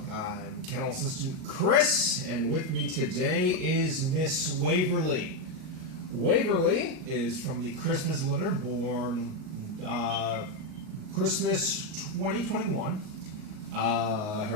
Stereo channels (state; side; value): late; left; 38 ms